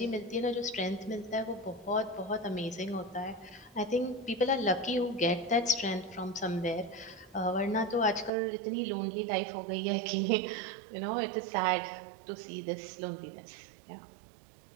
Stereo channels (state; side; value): drops out; left; at 8.3 s